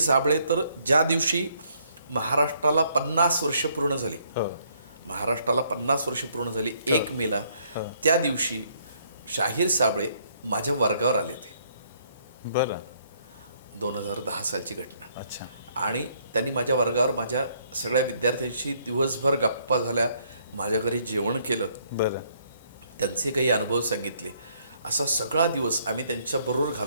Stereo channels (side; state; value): both; inverted; correlation -0.68